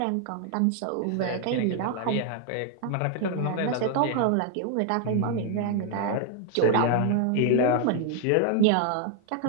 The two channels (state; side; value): different; both; correlation 0.00